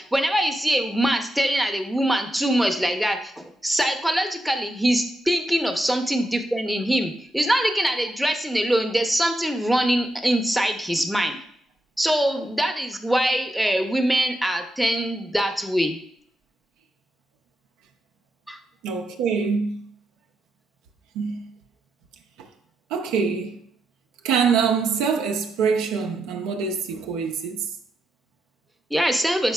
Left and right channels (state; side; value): normal; both; correlation 0.84